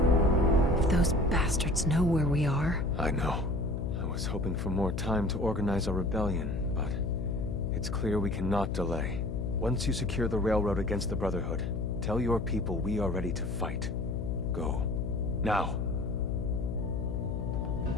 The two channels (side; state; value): left; noise; hum, 3 dB below the sound